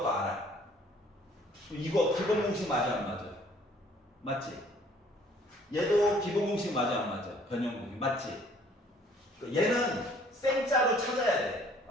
알아. 이거 기본 공식 맞아 안 맞아? 맞지? 얘도 기본 공식 맞아 안 맞아? 변형 공식 맞지? 얘는 생짜로 찾아야 돼.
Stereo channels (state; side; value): normal; both; correlation 0.58